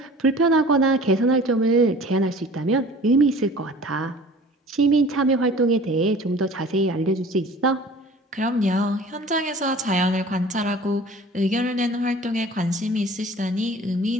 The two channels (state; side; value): normal; both; correlation 0.45